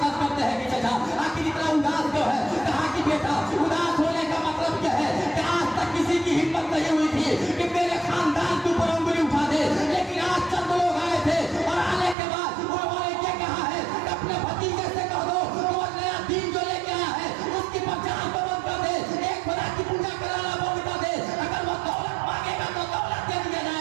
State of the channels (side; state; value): left; drops out; at 12.2 s